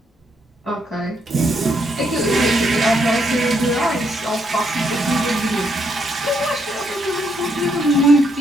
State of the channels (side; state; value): both; normal; correlation 0.75